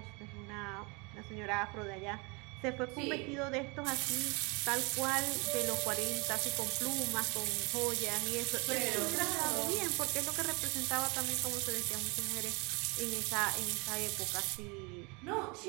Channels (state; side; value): quieter; left; 28.8 dB